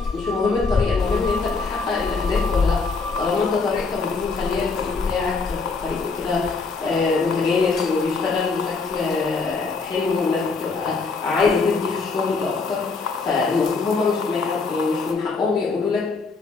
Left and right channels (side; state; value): right; quieter; 4.3 dB